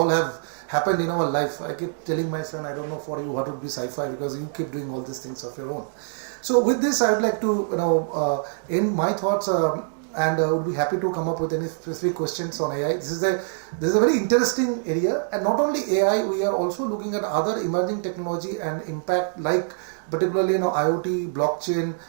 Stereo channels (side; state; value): left; silent; digital silence